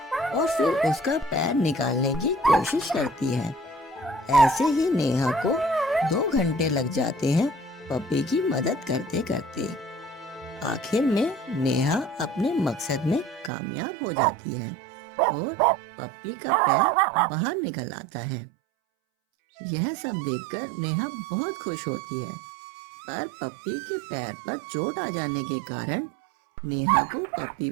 और फिर उसका पैर निकालने की कोशिश करती है। ऐसे ही नेहा को 2 घंटे लग जाते हैं पपी की मदद करते करते। आखिर में नेहा अपने मकसद में कामयाब हो जाती है और पप्पी का पैर बाहर निकल आता है। यह सब देखकर नेहा बहुत खुश होती है, पर पप्पी के पैर पर चोट आ जाने के कारण नेहा को पप्पी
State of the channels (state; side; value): drops out; left; at 13.5 s